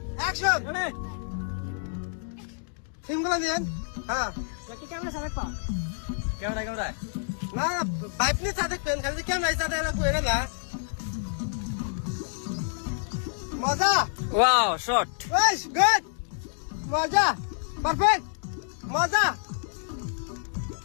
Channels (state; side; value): silent; right; digital silence